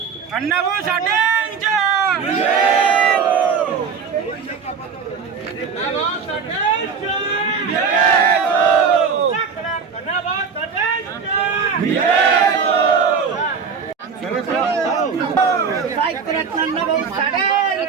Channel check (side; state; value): left; quieter; 5.9 dB